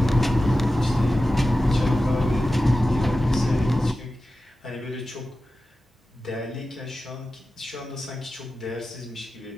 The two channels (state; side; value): normal; both; correlation 0.93